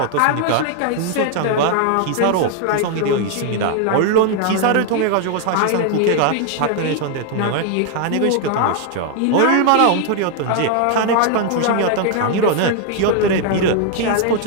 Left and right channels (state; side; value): different; both; correlation 0.00